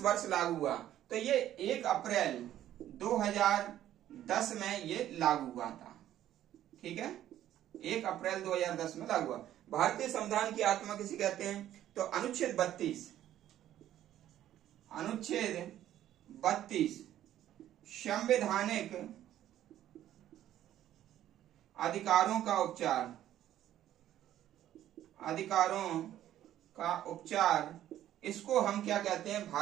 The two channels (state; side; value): quieter; left; 12.2 dB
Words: वर्ष लागू हुआ? तो ये 1 अप्रैल 2010 में ये लागू हुआ था। ठीक है, 1 अप्रैल 2010 में लागू हुआ। भारतीय संविधान की आत्मा किसे कहते हैं? तो अनुच्छेद 32 संवैधानिक अधिकारों का उपचार, इसको हम क्या कहते हैं?